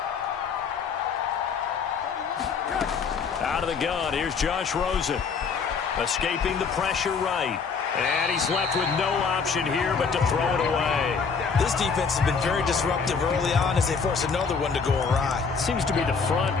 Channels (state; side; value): quieter; right; 5.6 dB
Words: Out of the gun, here's Josh Rosen. Escaping the pressure right. And he's left with no option here but to throw it away. This defense has been very disruptive early on as they force another one to go awry. Seems to be the front